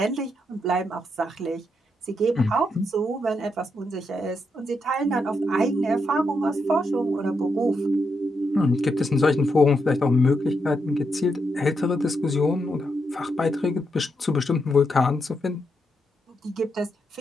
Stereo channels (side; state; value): both; normal; correlation 0.81